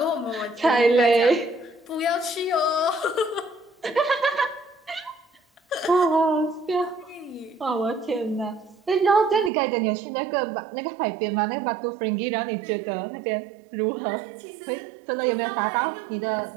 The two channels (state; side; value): drops out; left; at 9.5 s